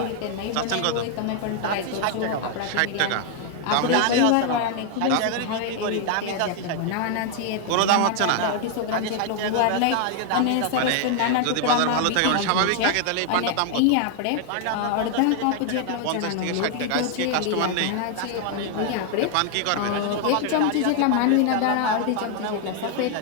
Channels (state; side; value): different; both; correlation 0.00